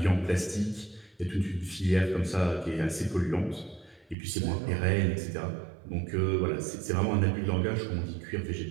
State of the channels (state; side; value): drops out; left; at 4.2 s